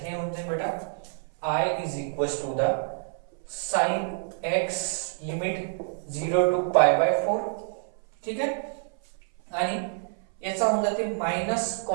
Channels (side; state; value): left; silent; 58 dB below the other